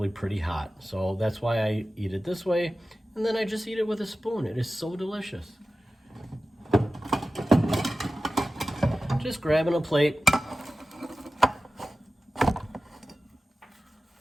pretty hot. So that's why I eat it this way, and then I just eat it with a spoon. It is so delicious. Just grabbing a plate.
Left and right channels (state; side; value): normal; both; correlation 0.95